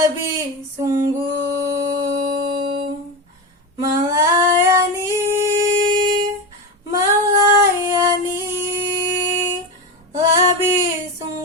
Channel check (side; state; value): both; normal; correlation 0.19